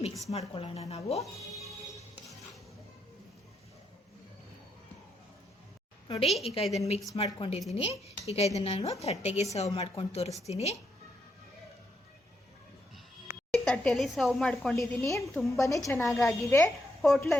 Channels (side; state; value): both; normal; correlation 0.79